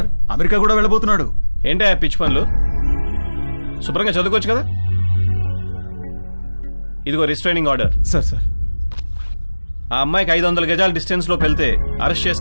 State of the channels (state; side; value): inverted; both; correlation -1.00